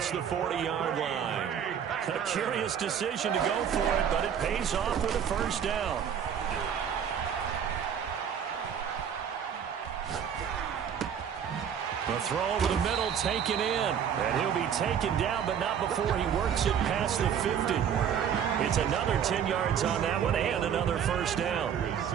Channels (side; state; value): left; quieter; 8.3 dB